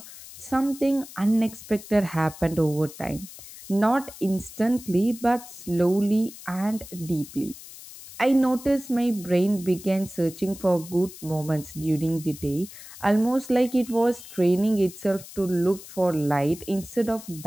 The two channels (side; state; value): left; noise; hiss, 16 dB below the sound